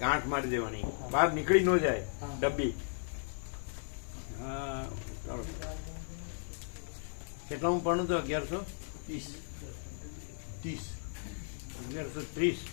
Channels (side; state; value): right; silent; 54 dB below the other